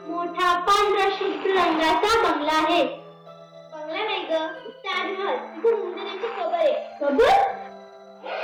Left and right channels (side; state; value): both; identical; correlation 1.00